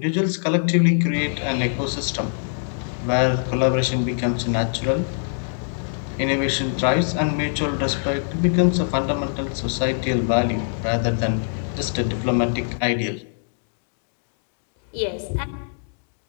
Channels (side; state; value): right; silent; digital silence